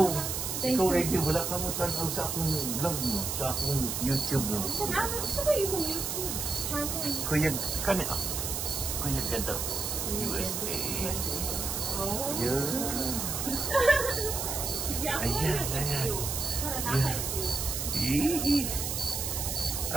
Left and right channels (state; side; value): noise; right; hiss, 2 dB below the sound